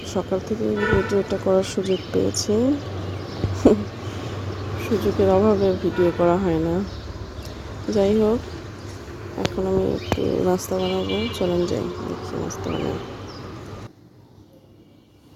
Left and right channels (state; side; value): identical; both; correlation 1.00